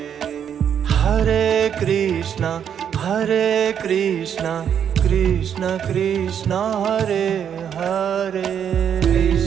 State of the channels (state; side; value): quieter; left; 8.6 dB